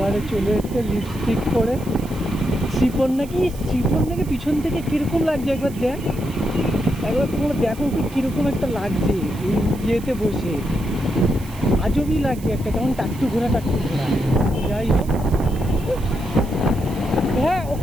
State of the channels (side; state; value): right; noise; hiss, 20 dB below the sound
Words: চলে এসছে লিপস্টিক পরে। শ্রীকন্যাকে পিছন থেকে কীরকম লাগছে একবার দেখ, একবার তোমরা দেখো কীরকম একটা লাগছে এই ইয়েতে বসে। আজবই লাগছে একটা, কেমন টাকটু ঘোরা। যাই হোক, হ্যাঁ